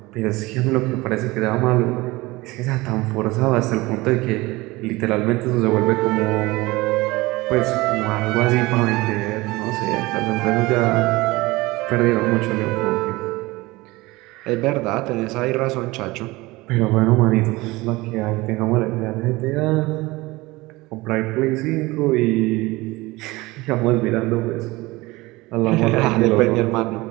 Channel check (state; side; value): quieter; left; 21.2 dB